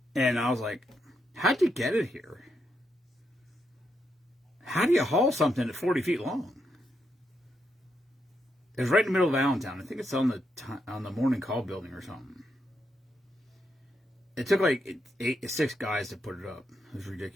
and I was like, how'd you get it here? How do you haul something at 40 feet long? It was right in the middle of Allentown. I think it's on the Morning Call building or something. It took like 6 guys to put it up. It was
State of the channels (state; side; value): normal; both; correlation 0.81